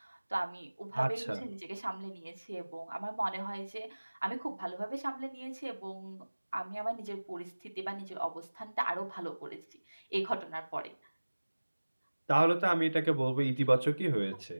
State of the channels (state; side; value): inverted; both; correlation -1.00